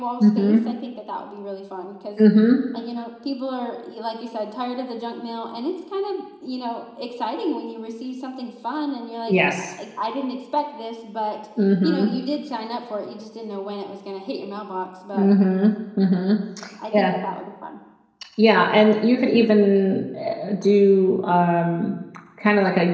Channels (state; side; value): identical; both; correlation 1.00